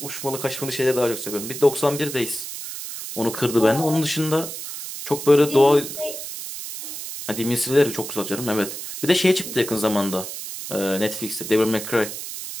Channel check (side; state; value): right; noise; hiss, 8 dB below the sound